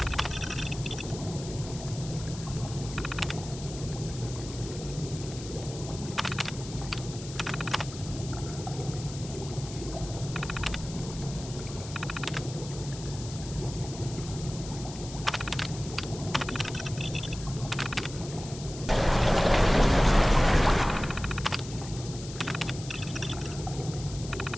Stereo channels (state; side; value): noise; left; hiss, 13 dB below the sound